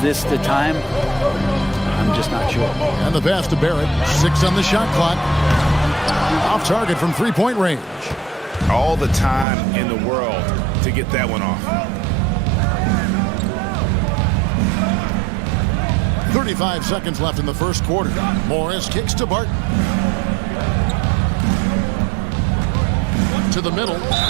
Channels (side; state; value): left; drops out; at 9.5 s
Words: the time? I'm just not sure. And the pass to Barrett. 6 on the shot clock. Off target from three-point range. All the time in the world to get that one off. 35 seconds left in the first quarter. Morris kicks to Barton. To the middle